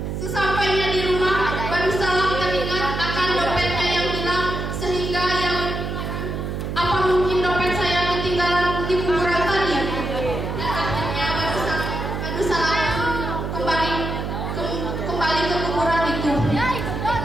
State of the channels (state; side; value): noise; right; hum, 4 dB below the sound